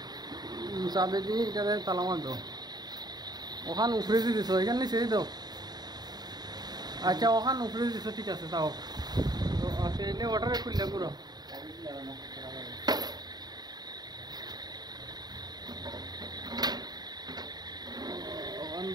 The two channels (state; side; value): late; left; 0.20 ms